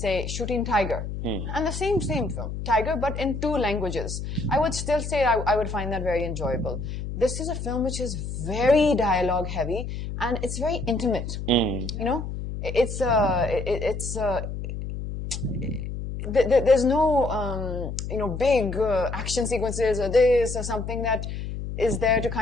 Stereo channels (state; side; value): noise; left; hum, 6 dB below the sound